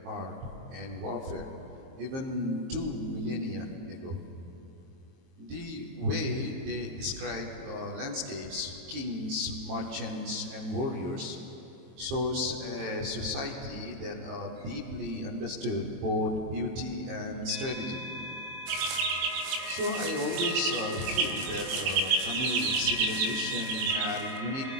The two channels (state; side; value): late; left; 23 ms